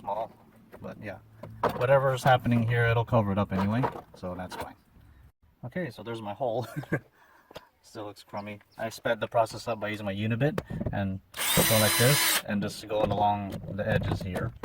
But yeah, whatever's happening here, it'll cover it up anyway, so that's fine. Okay, so there's my hole. Still looks crummy. I sped the process up by using my Unibit and going like this and just going along the edges here,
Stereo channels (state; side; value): identical; both; correlation 1.00